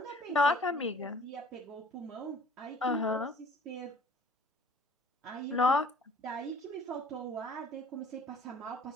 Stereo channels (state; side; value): normal; both; correlation 0.52